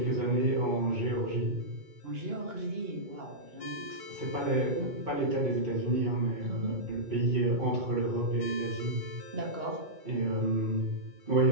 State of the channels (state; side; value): late; left; 2.2 ms